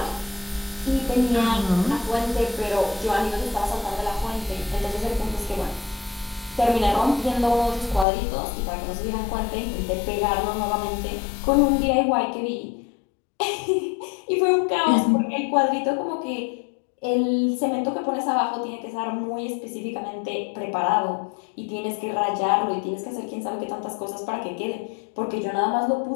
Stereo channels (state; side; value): drops out; right; at 8.1 s